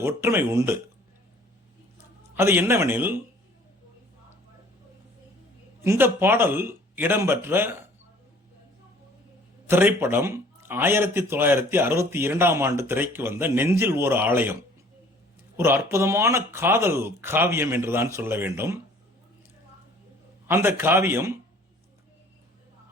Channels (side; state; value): both; normal; correlation 0.53